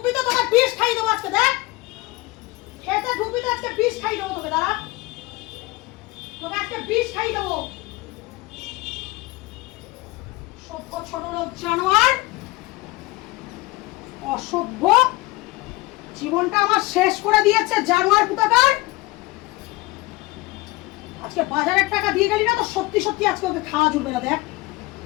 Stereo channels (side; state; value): right; quieter; 21.3 dB